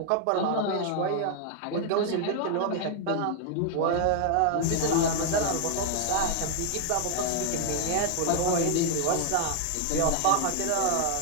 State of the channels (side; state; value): both; different; correlation 0.00